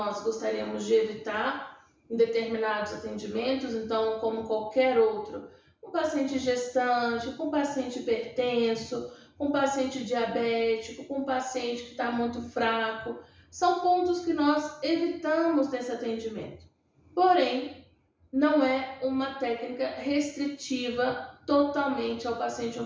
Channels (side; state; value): both; identical; correlation 1.00